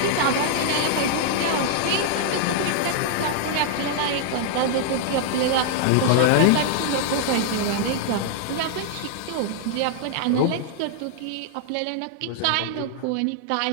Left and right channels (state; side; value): different; both; correlation -0.01